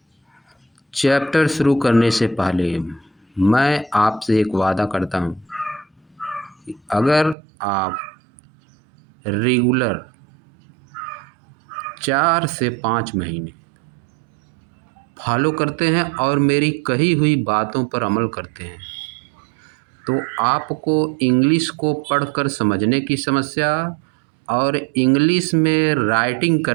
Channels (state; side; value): drops out; left; at 7.4 s